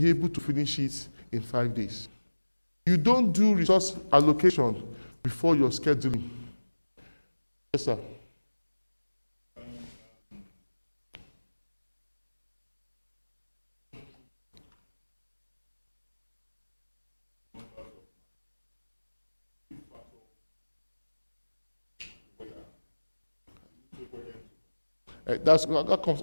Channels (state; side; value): inverted; both; correlation -1.00